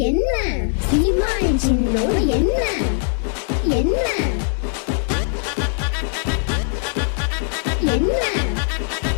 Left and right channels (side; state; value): right; silent; digital silence